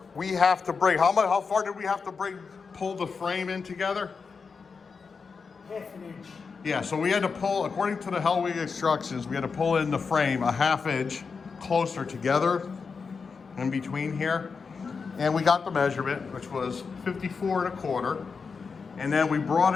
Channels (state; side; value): quieter; right; 5.2 dB